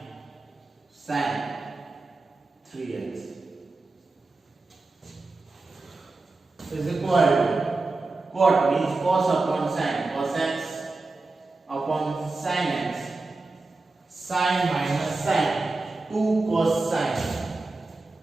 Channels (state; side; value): quieter; left; 3.4 dB